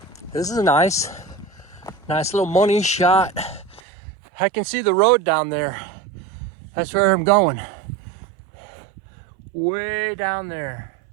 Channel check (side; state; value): left; drops out; at 3.8 s